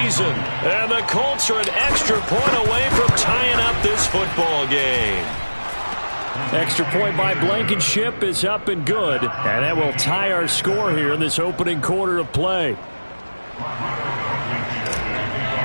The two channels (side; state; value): both; inverted; correlation -1.00